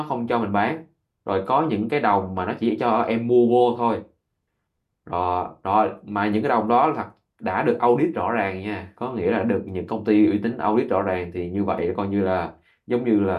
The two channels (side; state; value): both; identical; correlation 1.00